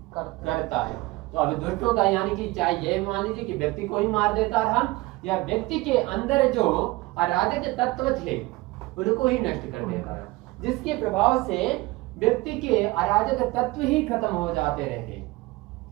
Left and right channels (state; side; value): quieter; left; 20.9 dB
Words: करता है। तो अभी दुष्टों का यानी कि चाहे ये मान लीजिए कि व्यक्ति को ही मार देता रहा, या व्यक्ति के अंदर जो अराजक तत्व थे उनको ही नष्ट कर देता है, जिसके प्रभाव से व्यक्ति के अराजक तत्व ही खत्म हो जाते रहे,